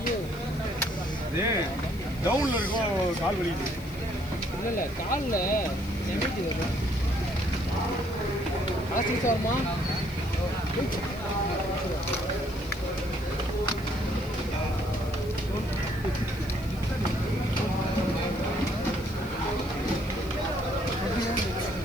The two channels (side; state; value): left; noise; hiss, 20 dB below the sound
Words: டவுன்ல இருக்கும் கால் வலி இல்லை காலில் எம்மிச்சு வரும் ஹாஸ்டல் சார்மா